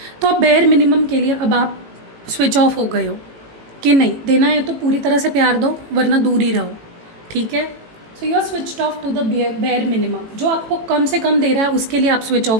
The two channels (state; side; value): late; left; 18 ms